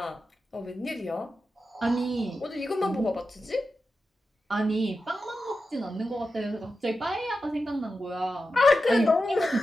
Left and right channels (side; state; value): both; normal; correlation 0.91